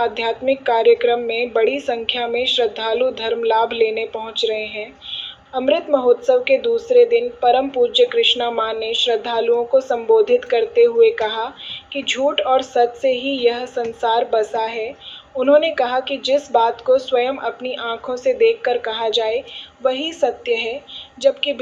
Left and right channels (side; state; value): both; identical; correlation 1.00